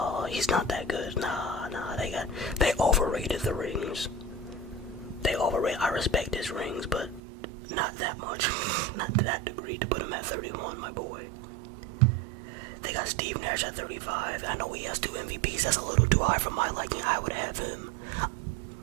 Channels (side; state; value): left; drops out; at 7.2 s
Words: he's not that good. Nah, they overrated the rings. I respect his rings, but not that much. Not to that degree to put him at 31, my boy. They got Steve Nash at 35. I know he has 2 MVPs. That's a little too high for my liking. I would have him.